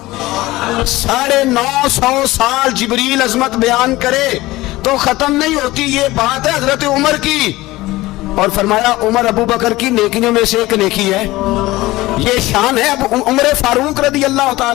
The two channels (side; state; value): right; quieter; 18.6 dB